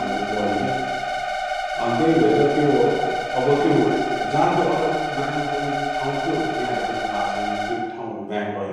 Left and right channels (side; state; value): both; identical; correlation 1.00